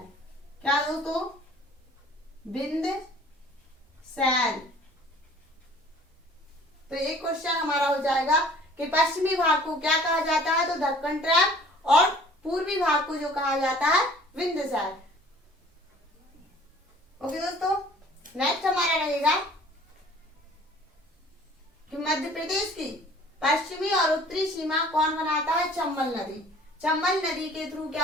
क्या दोस्तों? विंध्य। तो एक क्वेश्चन हमारा हो जाएगा कि पश्चिमी भाग को क्या कहा जाता है? तो दक्कन ट्रैम, और पूर्वी भाग को जो कहा जाता है विंध्य। ओके दोस्तों, नेक्स्ट हमारा रहेगा कि मध्य प्रदेश की पश्चिमी और उत्तरी सीमा कौन बनाता है? चंबल नदी। चंबल नदी के थ्रू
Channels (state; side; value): normal; both; correlation 0.51